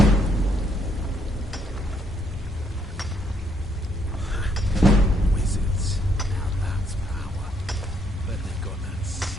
Wizards. Now that's power. Bet they've got that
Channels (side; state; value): both; normal; correlation 0.71